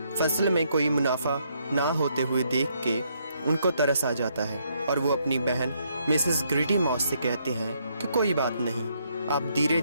फसल में कोई मुनाफा ना होते हुए देख के उनको तरस आ जाता है और वो अपनी बहन मिसेस ग्रीटी मॉस से कहते हैं कि कोई बात नहीं, आप धीरे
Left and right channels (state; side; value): inverted; both; correlation -0.73